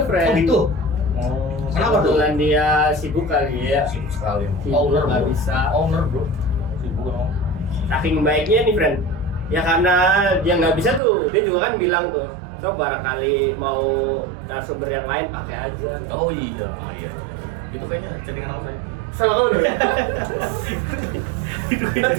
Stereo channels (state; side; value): drops out; left; at 11.0 s